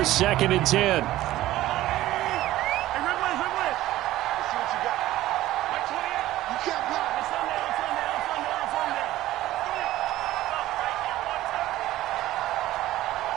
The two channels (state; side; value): quieter; left; 15.3 dB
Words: 2nd and 10.